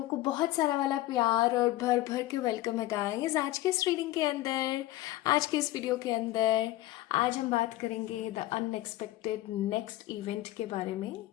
को बहुत सारा वाला प्यार और भर भर के वेलकम है गाइस आज के इस रीडिंग के अंदर, आज के इस वीडियो के अंदर। आज हम बात करेंगे द अनएक्सपेक्टेड नेक्स्ट इवेंट के बारे में।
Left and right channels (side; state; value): right; quieter; 16.3 dB